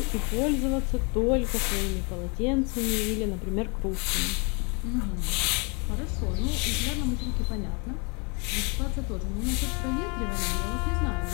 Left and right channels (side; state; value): right; quieter; 33.0 dB